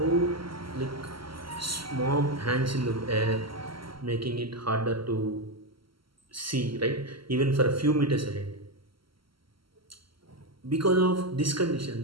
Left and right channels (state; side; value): late; left; 0.74 ms